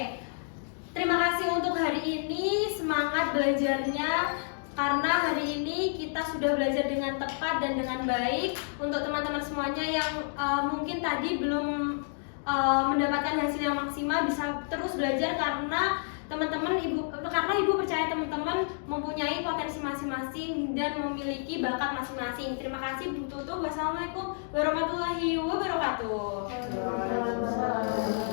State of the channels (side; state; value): right; silent; digital silence